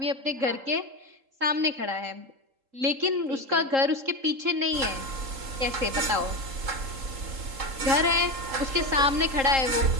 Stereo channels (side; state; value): left; late; 3.8 ms